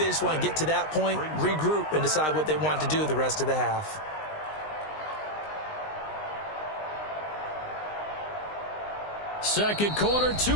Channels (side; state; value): right; late; 19 ms